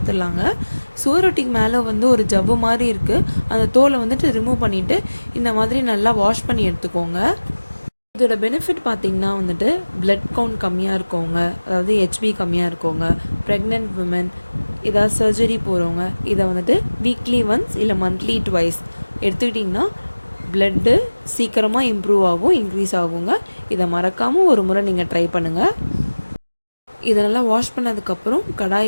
சுவரொட்டிக்கு மேலே ஒரு ஜவ்வு மாதிரி இருக்குது. அந்த தோலை ரிமூவ் பண்ணிவிட்டு இந்த மாதிரி நல்லா வாஷ் பண்ணி எடுத்துக்கோங்க. இதோட பெனிஃபிட் பார்த்திங்கன்னா பிளட் கவுண்ட் கம்மியாக இருக்கவங்க, அதாவது ஹெச்பி கம்மியாக இருக்கவங்க, ப்ரெக்னென்ட் விமன், ஏதாவது சர்ஜரி போகிறவங்க இதை வீக்லி ஒன்ஸ் இல்லை மந்த்லி ட்வைஸ் எடுத்துக்கிட்டிங்கன்னா பிளட்டு சீக்கிரமாக இம்ப்ரூவ் ஆகும், இன்க்ரீஸ் ஆகுங்க. இதை மறக்காமல் ஒரு முறை நீங்கள் ட்ரை பண்ணுங்கள். இதை நல்லா வாஷ் பண்ணதுக்கப்புறம்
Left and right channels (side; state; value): both; inverted; correlation -1.00